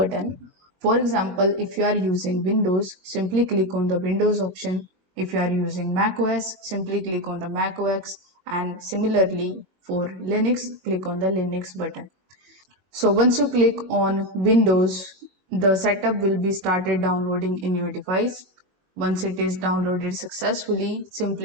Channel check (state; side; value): late; left; 22 ms